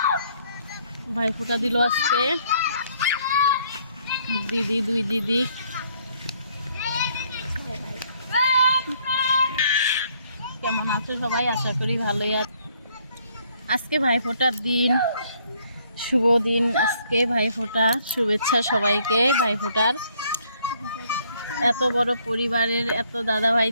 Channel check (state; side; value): inverted; both; correlation -0.66